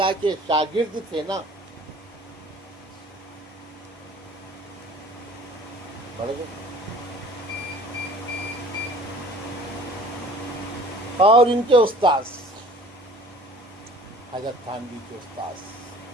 کے شاگرد تھے نا، پڑھ گئے۔ اور ان کے استاذ حضرت تھانوی کے استاذ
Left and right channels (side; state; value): both; normal; correlation 0.48